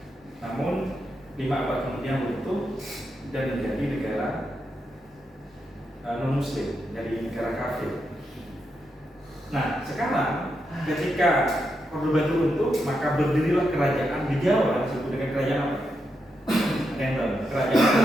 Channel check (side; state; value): both; normal; correlation 0.84